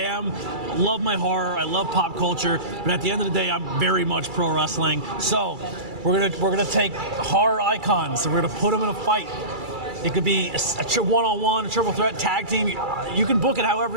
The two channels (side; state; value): left; late; 2.3 ms